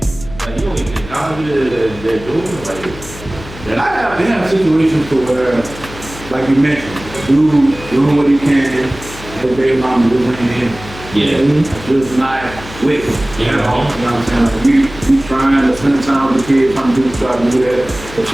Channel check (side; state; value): left; noise; hum, 15 dB below the sound